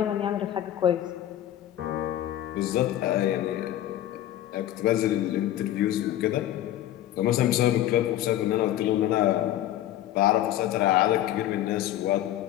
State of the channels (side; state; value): right; quieter; 12.8 dB